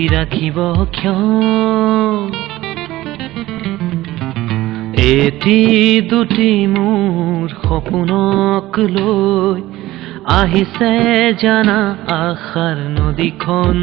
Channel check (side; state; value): left; quieter; 16.6 dB